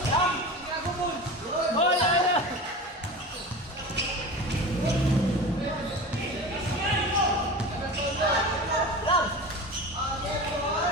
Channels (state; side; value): normal; both; correlation 0.32